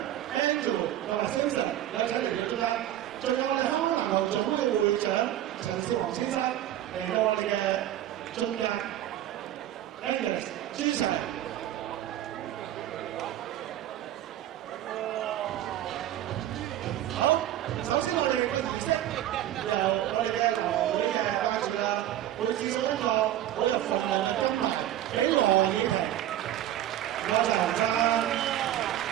同埋 Simpson 有請嚟到中間，仲有我哋香港籃球總會嘅會長陳少皇先生。嚟到我哋嘅中間 ，Angus、朱 Sir， 好，首先我哋個儀式由我哋嘅南華會嘅班主啦，會賜送一個好有份量嘅金牌俾羅以婷，唔該曬洪生。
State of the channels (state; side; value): quieter; left; 12.6 dB